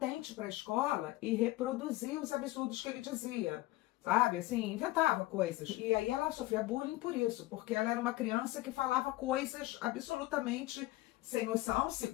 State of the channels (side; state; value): right; quieter; 18.4 dB